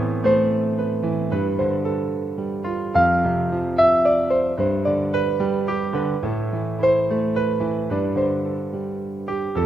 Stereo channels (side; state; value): both; normal; correlation 0.86